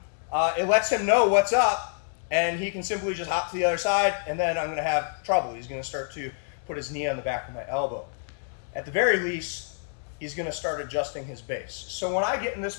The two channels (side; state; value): right; silent; digital silence